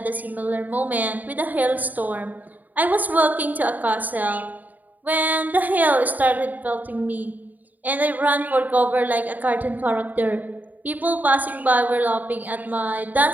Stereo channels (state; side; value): late; left; 0.082 ms